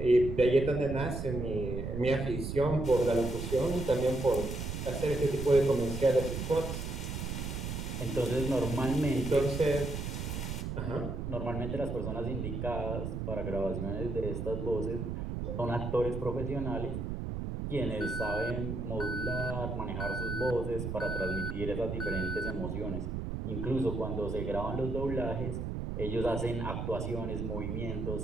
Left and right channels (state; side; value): noise; right; rumble, 4 dB below the sound